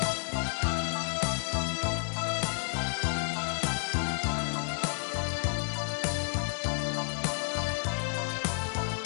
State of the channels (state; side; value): silent; right; 57 dB below the other